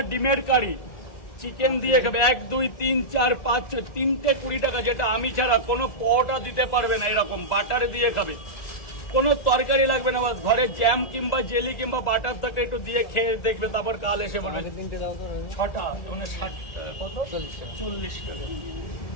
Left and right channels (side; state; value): right; late; 1.8 ms